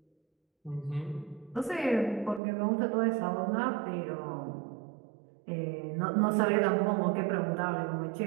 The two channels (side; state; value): left; drops out; at 2.4 s